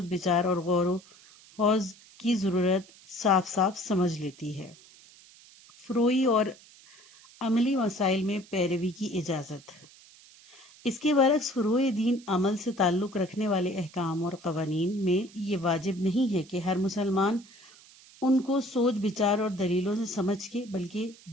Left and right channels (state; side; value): noise; right; hiss, 24 dB below the sound